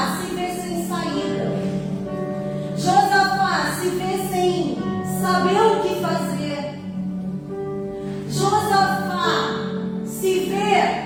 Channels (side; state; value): both; identical; correlation 1.00